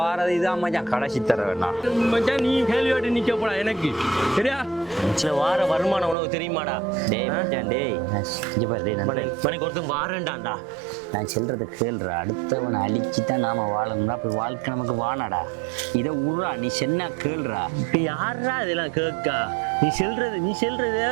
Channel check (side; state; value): left; drops out; at 6.2 s